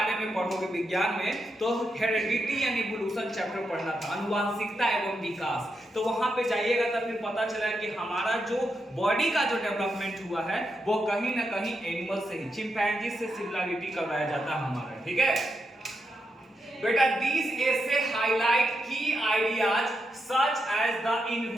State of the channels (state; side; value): normal; both; correlation 0.84